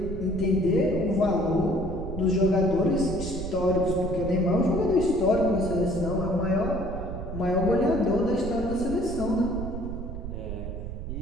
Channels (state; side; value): noise; right; rumble, 7 dB below the sound